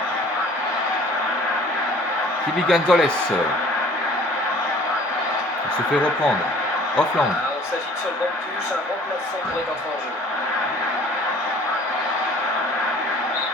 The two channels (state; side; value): normal; both; correlation 0.51